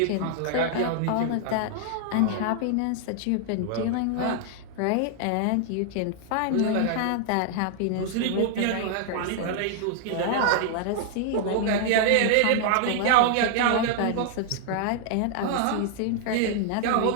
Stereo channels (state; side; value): different; both; correlation -0.01